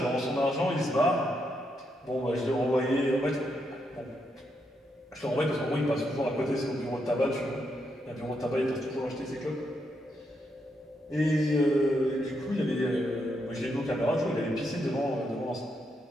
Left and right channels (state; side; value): normal; both; correlation 0.80